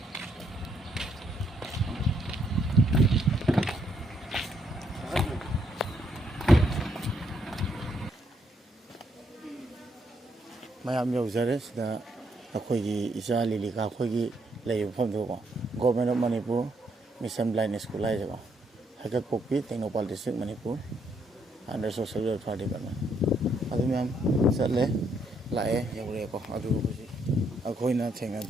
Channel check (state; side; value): normal; both; correlation 0.74